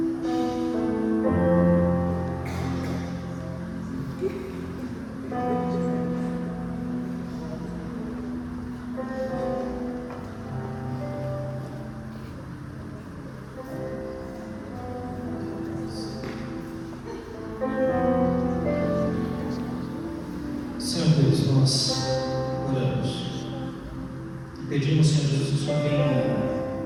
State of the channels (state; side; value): identical; both; correlation 1.00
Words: Senhor Deus, nós oramos e pedimos, Senhor Jesus, que o Senhor venha